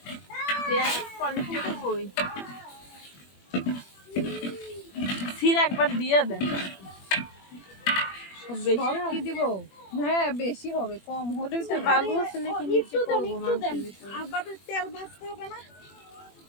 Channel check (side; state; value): right; late; 21 ms